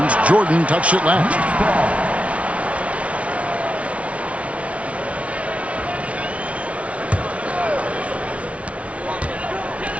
Jordan touched it last.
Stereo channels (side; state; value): left; late; 0.063 ms